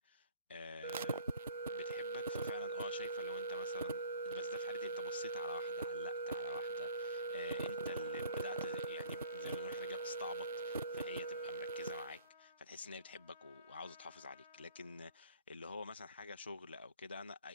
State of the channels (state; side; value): inverted; both; correlation -0.50